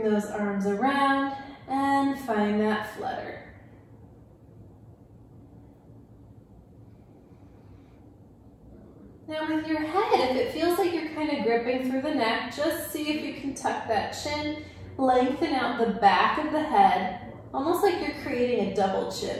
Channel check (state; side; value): identical; both; correlation 1.00